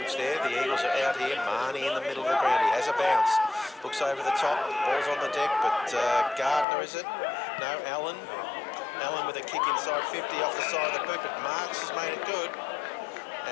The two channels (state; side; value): drops out; right; at 6.7 s